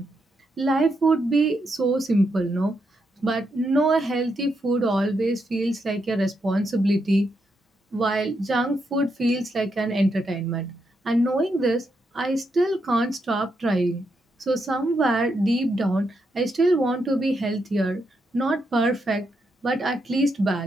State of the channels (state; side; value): normal; both; correlation 0.81